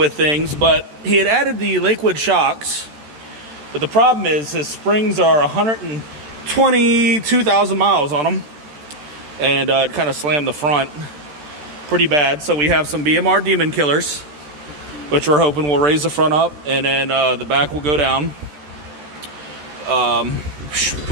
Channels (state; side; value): late; left; 14 ms